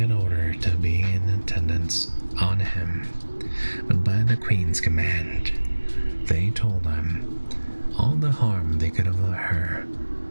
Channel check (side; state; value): both; inverted; correlation -1.00